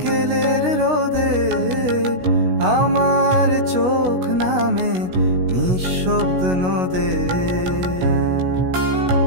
রোদে, আমার চোখ নামে নিঃশব্দ নদে।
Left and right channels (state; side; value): late; left; 16 ms